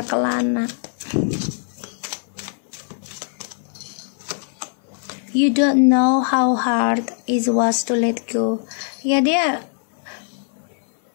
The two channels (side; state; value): right; silent; 57 dB below the other